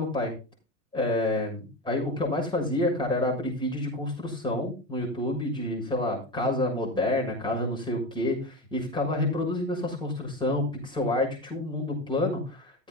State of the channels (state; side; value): normal; both; correlation 0.22